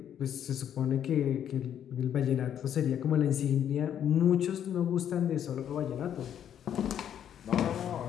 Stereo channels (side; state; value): right; quieter; 9.6 dB